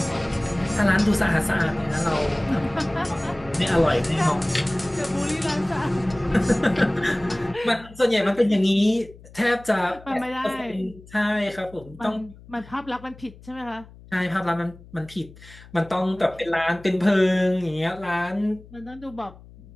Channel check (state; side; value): noise; left; hum, 21 dB below the sound